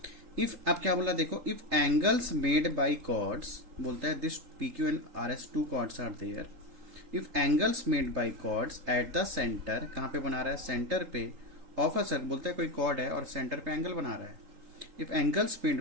इफ अब क्या बोला देखो, if angles made by chords, बोलता है this P Q and R S two chords are there. If angles made by chords at the centre, कहाँ पे बना रहा है? सेंटर पे. ऑफ अ सर्कल, बोलता है कोई कॉर्ड है और सेंटर पे एंगल बना रहा है. If angles made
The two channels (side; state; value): left; late; 3.8 ms